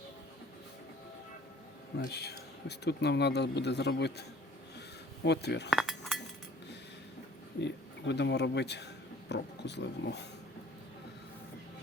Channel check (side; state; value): both; normal; correlation 0.53